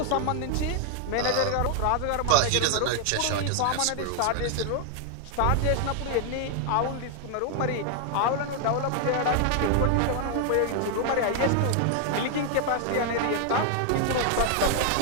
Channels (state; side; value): different; both; correlation 0.00